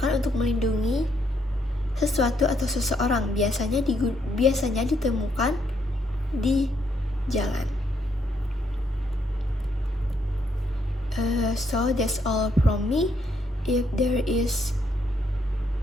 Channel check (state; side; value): normal; both; correlation 0.74